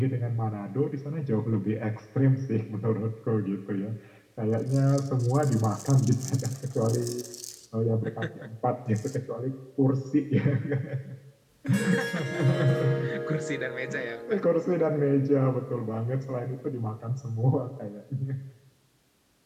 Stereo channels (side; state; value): both; identical; correlation 1.00